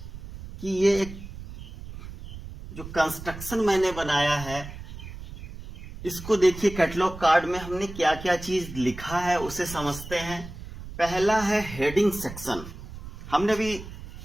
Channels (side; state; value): right; noise; rumble, 12 dB below the sound